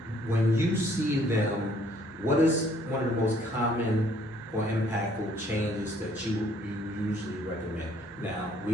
when you see them, what is one of the most common or impactful changes that you usually recommend? Now, we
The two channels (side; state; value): both; normal; correlation 0.62